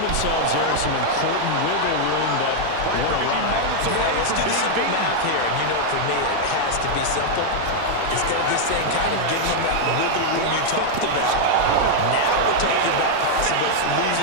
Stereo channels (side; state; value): both; different; correlation -0.01